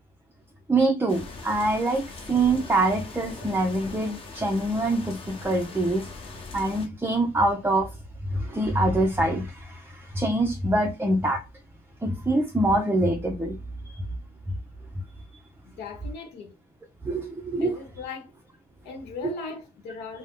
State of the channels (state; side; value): normal; both; correlation 0.69